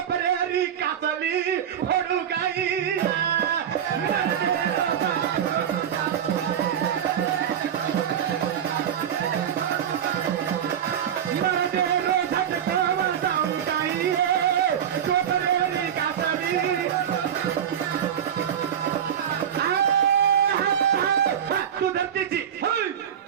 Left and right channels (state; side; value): quieter; left; 9.1 dB